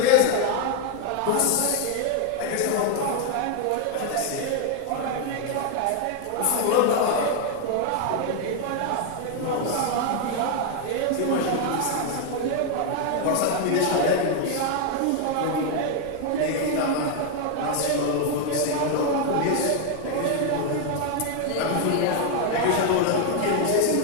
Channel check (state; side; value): different; both; correlation 0.00